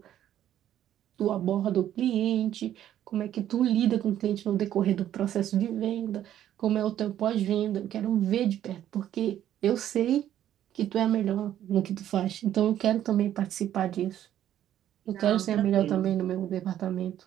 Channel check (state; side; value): quieter; left; 11.4 dB